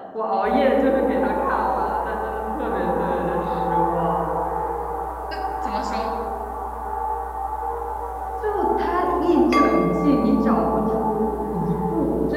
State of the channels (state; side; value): identical; both; correlation 1.00